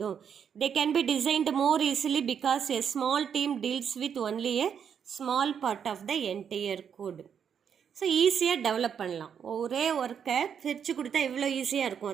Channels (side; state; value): left; quieter; 7.7 dB